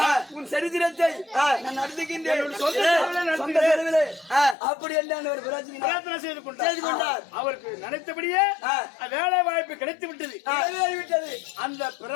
உன் சரித்திரத்தை நான் நடத்துகின்றேன். அப்படி என்ன ஒரு பிரார்த்தனை செய்து கொண்டார். அவருக்கு நினைத்தபடியே வேலை வாய்ப்பு கிடைத்து விட்டது. அந்த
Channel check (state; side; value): drops out; right; at 4.5 s